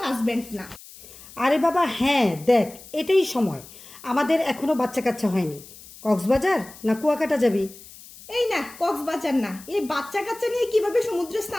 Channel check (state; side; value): noise; left; hiss, 19 dB below the sound